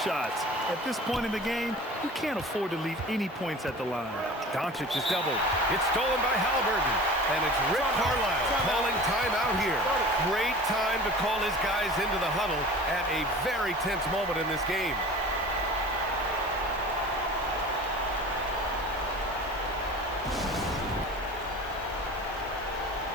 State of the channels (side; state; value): both; normal; correlation 0.40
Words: shots. At this point in the game, you can't afford to leave any points at the line. Doncic is doubled. It's stolen by Halliburton. And it's Rick Carlisle calling timeout here. Great time to call his guys into the huddle at a very tense moment in this game.